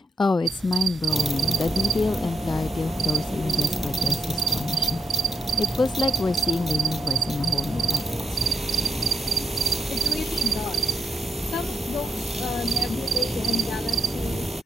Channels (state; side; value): normal; both; correlation 0.79